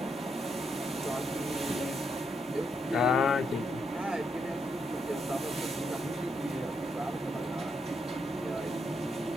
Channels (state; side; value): normal; both; correlation 0.78